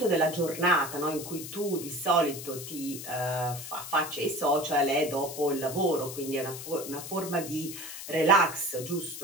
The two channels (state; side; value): noise; left; hiss, 10 dB below the sound